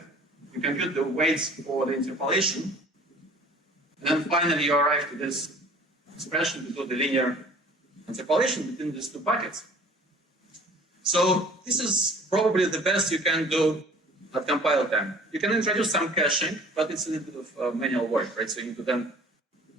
you compute the weights for the interpolation, and then finally you arrive to this expression to do the linear interpolation between these two buckets. So this is probably the best you can do at compile time. You can introduce some caching, but it's a little bit of manual work, right? So you need to then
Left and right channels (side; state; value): both; normal; correlation 0.49